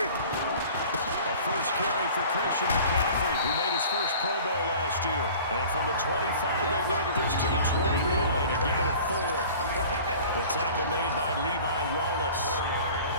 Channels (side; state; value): both; inverted; correlation -0.44